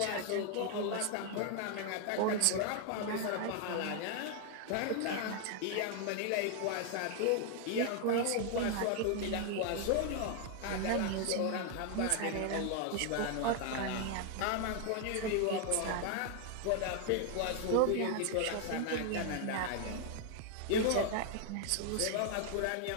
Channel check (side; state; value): both; different; correlation 0.00